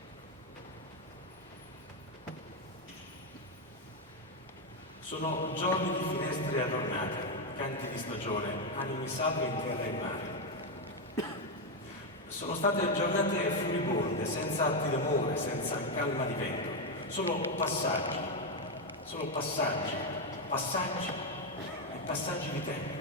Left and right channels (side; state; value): both; normal; correlation 0.05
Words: Sono giorni di finestre adornate, canti di stagione, animi salvi in terra e mare. Sono state giornate furibonde, senza atti d'amore, senza calma di vento, solo passaggi e passaggi di tempo.